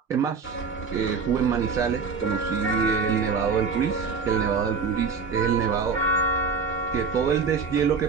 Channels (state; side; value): quieter; left; 5.2 dB